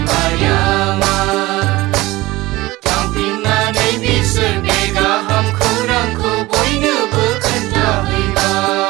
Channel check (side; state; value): left; quieter; 19.3 dB